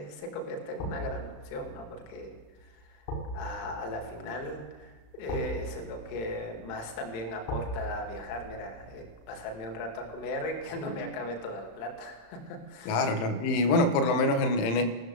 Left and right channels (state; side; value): late; right; 35 ms